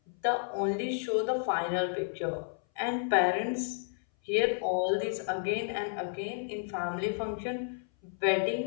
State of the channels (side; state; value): right; silent; 57 dB below the other